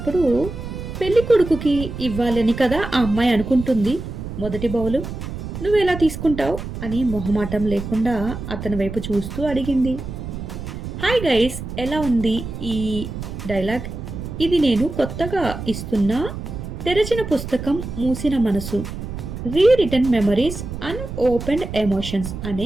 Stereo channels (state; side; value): noise; right; rumble, 8 dB below the sound